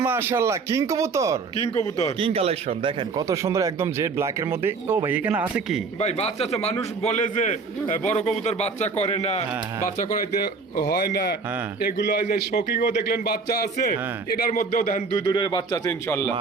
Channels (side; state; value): left; quieter; 4.6 dB